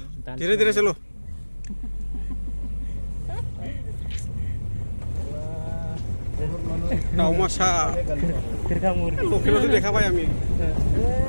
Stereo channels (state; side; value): inverted; both; correlation -1.00